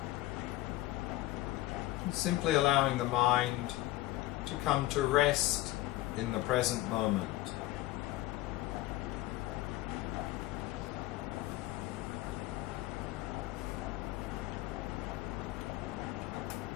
Simply allowing the mind to come to rest in the present moment.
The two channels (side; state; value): right; quieter; 16.9 dB